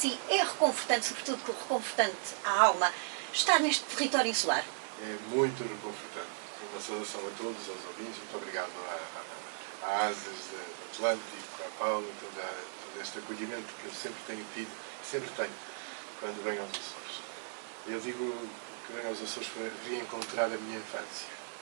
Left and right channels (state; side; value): silent; left; digital silence